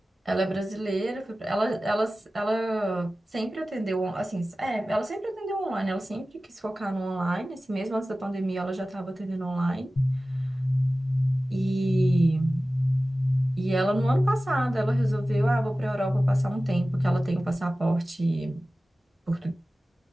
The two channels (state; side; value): normal; both; correlation 0.96